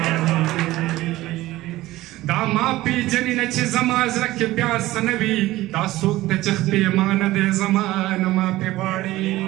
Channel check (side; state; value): left; quieter; 17.0 dB